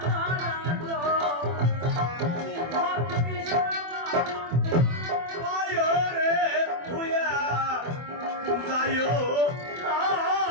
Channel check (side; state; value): left; late; 24 ms